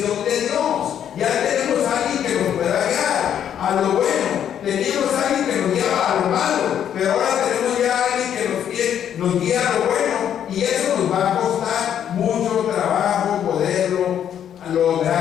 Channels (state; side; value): quieter; right; 9.5 dB